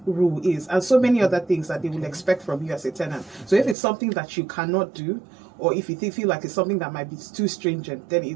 rule is, and so many other things that they will expect from you as a tenant. So if it's something that you cannot do, or if you feel like it's something that might be too stringent, then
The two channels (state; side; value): drops out; left; at 3.8 s